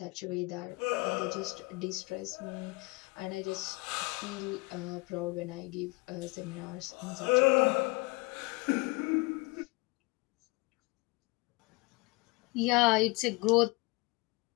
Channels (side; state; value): right; quieter; 26.1 dB